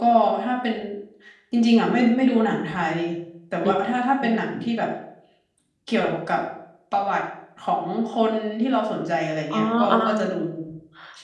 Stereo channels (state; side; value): identical; both; correlation 1.00